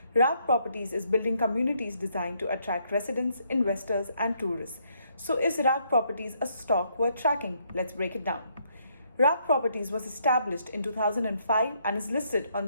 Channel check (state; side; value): inverted; both; correlation -0.72